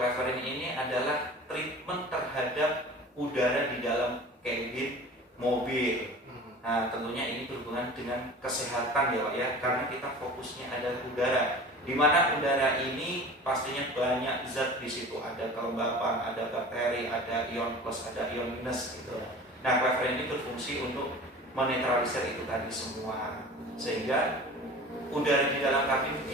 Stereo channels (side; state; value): both; normal; correlation 0.39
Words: ini adalah treatment terhadap udara di dalam kabin mobil. Nah, tentunya ini berhubungan dengan kesehatan ya Pak ya, karena kita fokusnya adalah udara, di mana udara ini pastinya banyak zat di situ, ada kelembapan, ada bakteri, ada ion plus, ada ion minus gitu. Nah, cleverin ini berfungsi untuk menetralisir itu tadi semua, sehingga udara di dalam kabin